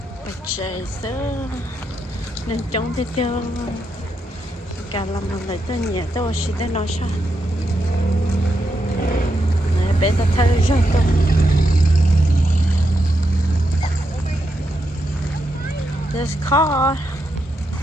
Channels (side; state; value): both; normal; correlation 0.83